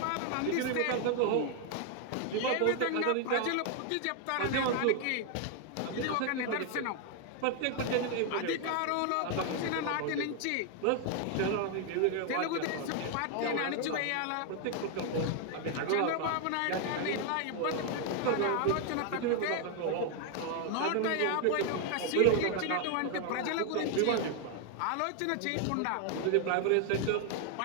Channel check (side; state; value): both; different; correlation 0.00